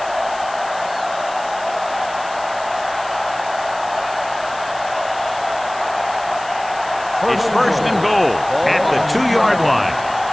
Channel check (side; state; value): left; noise; hiss, 18 dB below the sound